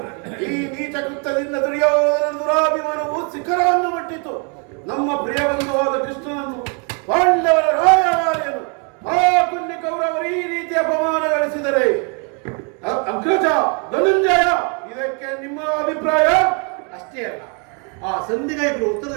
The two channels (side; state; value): left; quieter; 37.2 dB